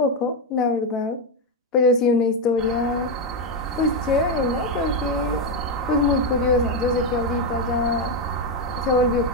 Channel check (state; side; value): normal; both; correlation 0.06